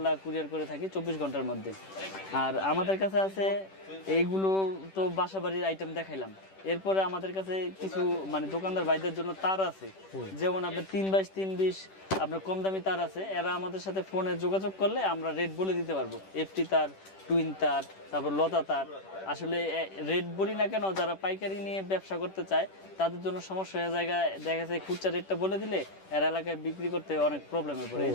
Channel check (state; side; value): late; right; 10 ms